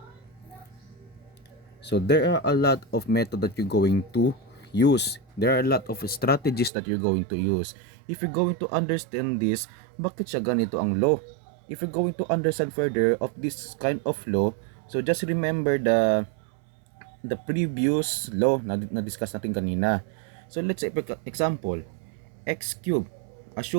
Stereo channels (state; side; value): drops out; left; at 6.7 s